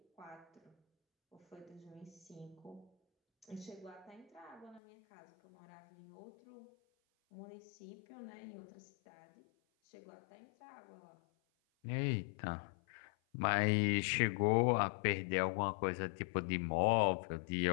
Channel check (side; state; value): right; drops out; at 4.8 s